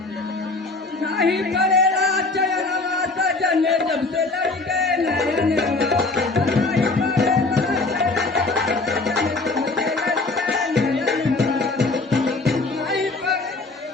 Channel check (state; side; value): quieter; right; 3.4 dB